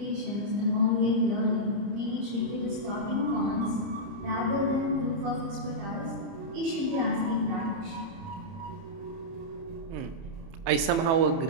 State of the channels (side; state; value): left; late; 30 ms